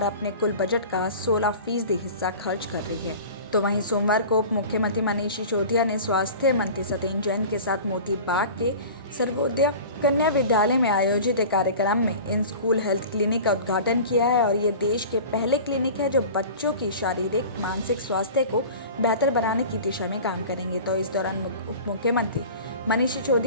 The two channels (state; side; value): inverted; both; correlation -0.38